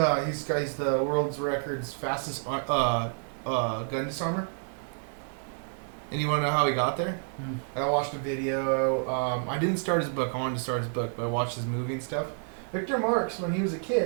world's records fastest gun disarmer. And you want to know how he got there? I watched a video. I didn't start his book. I wanted to start his book, but I watched his movie and stuff. Victor Marx, when he was a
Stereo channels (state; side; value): silent; left; 58 dB below the other